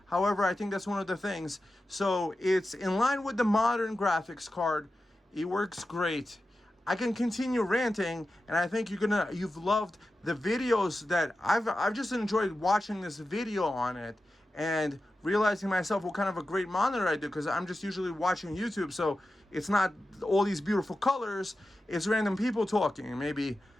However, I think that's one of the things. So it's in line with the modern graphics card. It works great. I can continue ranting, and I think you've loved the videos that I've just enjoyed watching this video on it and realizing myself what kind of a great monitor I do, because I'm just usually watching YouTube, so it's not all these beautiful colors, it's random people talking, maybe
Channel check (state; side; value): normal; both; correlation 0.93